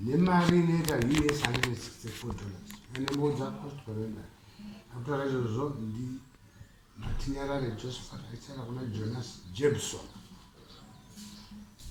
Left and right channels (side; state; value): both; identical; correlation 1.00